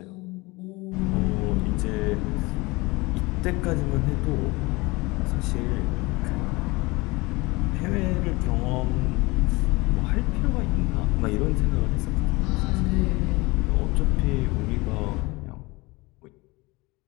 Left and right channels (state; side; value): quieter; right; 23.5 dB